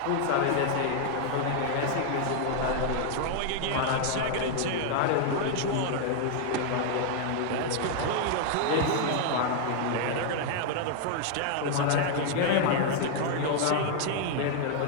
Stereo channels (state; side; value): different; both; correlation 0.00